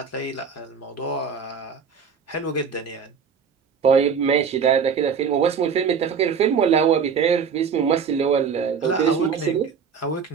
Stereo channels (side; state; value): left; quieter; 6.4 dB